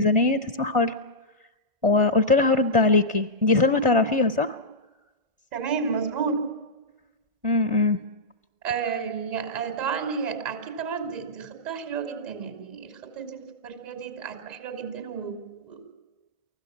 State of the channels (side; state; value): left; late; 1.5 ms